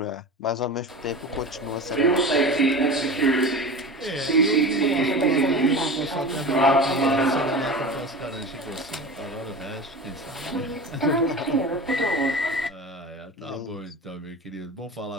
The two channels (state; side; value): normal; both; correlation 0.31